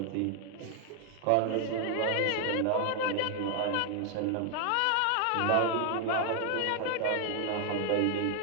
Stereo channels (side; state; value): both; different; correlation 0.00